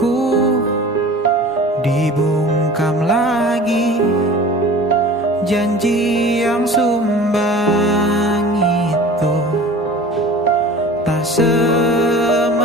dibungkam lagi janji yang sumbang itu tak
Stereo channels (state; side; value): normal; both; correlation 0.41